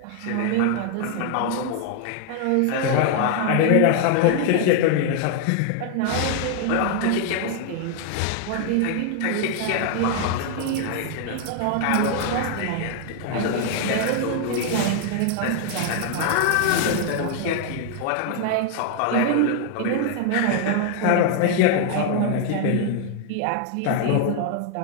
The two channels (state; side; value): different; both; correlation 0.00